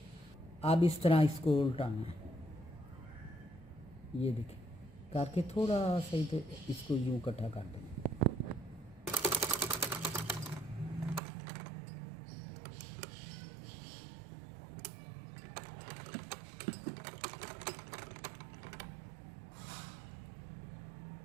अब इस तरह इसको उल्टाना है। ये देखिए करके थोड़ा सही, तो इसको यूँ इकट्ठा कर देंगे।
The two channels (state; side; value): drops out; left; at 11.2 s